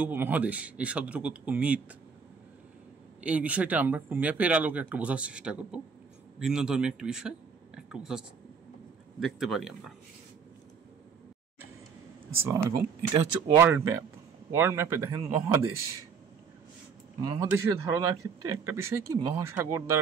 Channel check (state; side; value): quieter; left; 5.9 dB